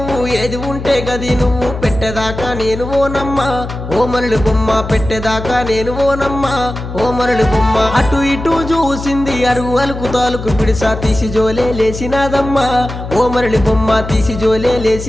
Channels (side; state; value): left; noise; hum, 8 dB below the sound